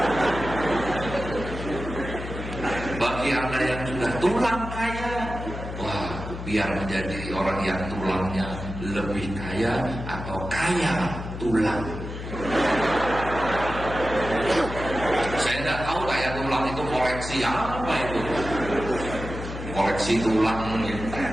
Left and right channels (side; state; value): left; noise; hum, 8 dB below the sound